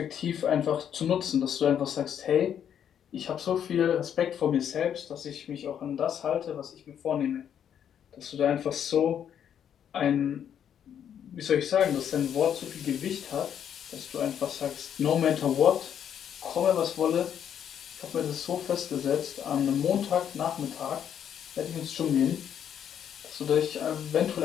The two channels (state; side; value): quieter; right; 9.0 dB